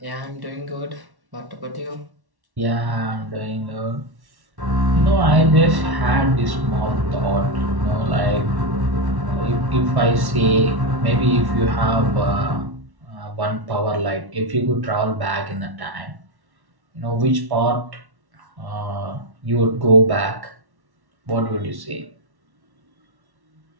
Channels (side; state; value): left; late; 1.1 ms